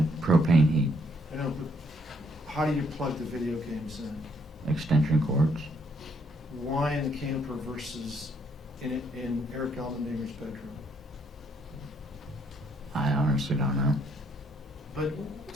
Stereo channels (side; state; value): both; normal; correlation 0.70